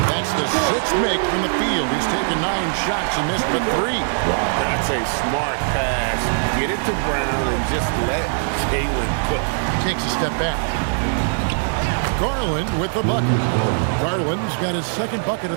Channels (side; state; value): left; silent; 65 dB below the other